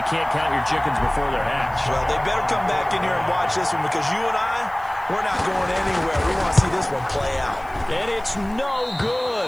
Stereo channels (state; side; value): noise; left; hiss, 27 dB below the sound